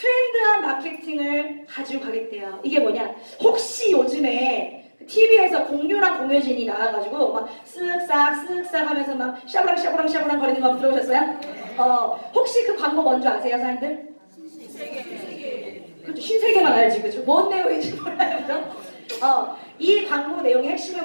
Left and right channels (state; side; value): inverted; both; correlation -1.00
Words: 마케팅을 가지고 가겠대요. 이게 뭐냐? 혹시 요즘에 TV에서 공유랑 공효진이 나와가지고 막 쓱싹 하면서 막 샤브랑 거리는 거 들어보셨어요? 혹시 그 광고 뭔지 아세요, 사람들? 신세계. 그렇죠. 신세계만 알지, 그죠? 뭔 내용인지 몰라요, 그죠? 이 광고 내용의